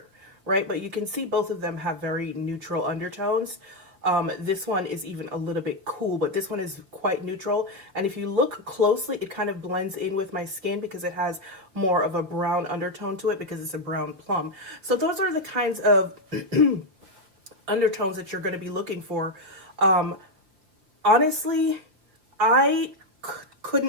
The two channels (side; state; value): left; late; 5.3 ms